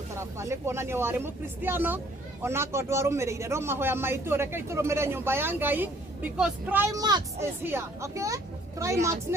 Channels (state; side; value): normal; both; correlation 0.60